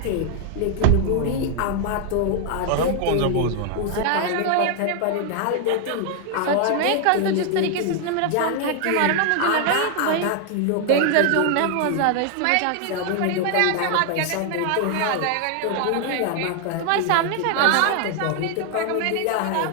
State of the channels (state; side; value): different; both; correlation 0.00